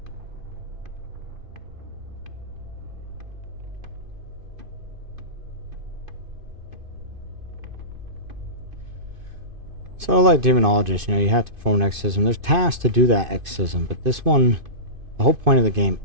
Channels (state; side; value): late; left; 2.5 ms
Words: So like demonologists, you know, you have to perform an exorcism. There's tasks to do that exorcism, but this one, the whole point of the game